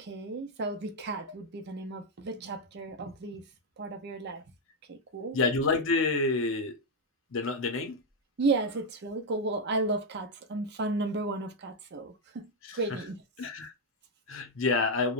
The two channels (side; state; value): both; normal; correlation 0.02